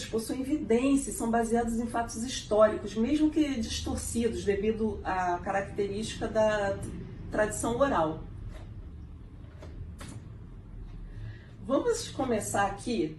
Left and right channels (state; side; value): identical; both; correlation 1.00